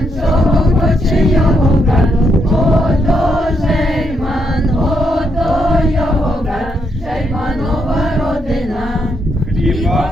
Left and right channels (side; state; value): both; normal; correlation 0.78